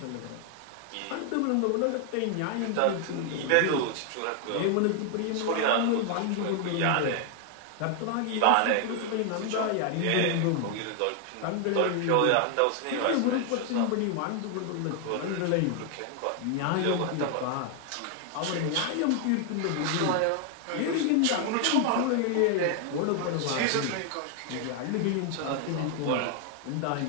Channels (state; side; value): different; both; correlation 0.00